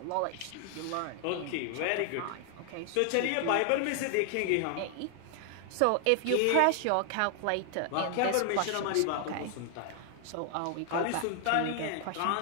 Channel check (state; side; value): different; both; correlation 0.00